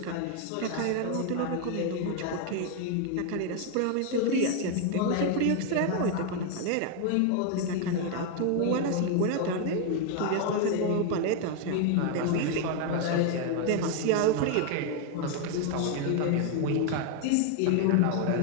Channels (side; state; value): both; different; correlation 0.01